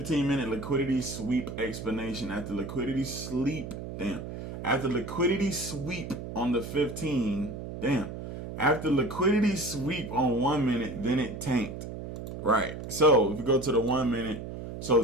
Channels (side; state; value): right; noise; hum, 8 dB below the sound